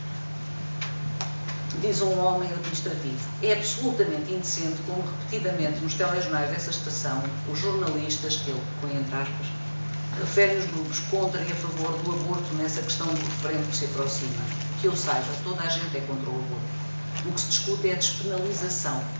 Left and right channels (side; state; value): both; inverted; correlation -1.00